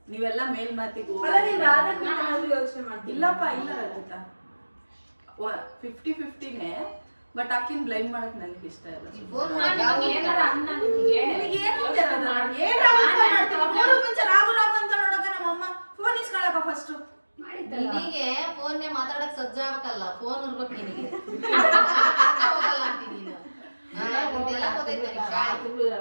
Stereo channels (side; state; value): both; inverted; correlation -1.00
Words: ನೀವೆಲ್ಲ ಮೇಲ್ ಮಾತಿಗೆ ಅಲ್ಲ ನೀನ್ ರಾಧಕ್ ಯೋಚನೆ ಮಾಡ್ತೀನಿ. ಇಲ್ಲಪ್ಪ ಇಲ್ಲ ರಚಿತಾ, 50-50ನೇ. ಬಟ್ ಆಕಿನ್ ಬ್ಲೈಮ್ ಮಾಡಕ್ ನನಗೆ ಇಷ್ಟ ಇಲ್ಲ. ಫೋನ್ ಮಾಡಿ ಏನಾರ ಅನ್ನ ನಿಮಗೆ ನಿನಗೆ ಏನು ಅಂತ ಇರೋದು? ಏನ್ ರಾಗು ಫೋನ್ ಮಾಡ್ತೀನಿ? ಮೂರು ಮುಂಚೆ ರಾಗು ಅಂತ ನೋಡಕ ನಮ್ಮಮ್ಮ ಫೋನ್ ಇಸ್ಕೊಳಕ ಫಸ್ಟ್ ನಿನಗೆ ಫೋನ್ನೇ ಮಾತಾಡಕ್ ಸಜ್ಜಾಗಲ್ಲ. ಫೋನ್ ಇರ್ಬೇಕು ನಿನಗೆ. ಹೋಗಲ್ಲ ಅಂತೀನಿ ನೀನು. ಇದೆಲ್ಲ ಗೊತ್ತೈತೆ ನಿನಗೆ.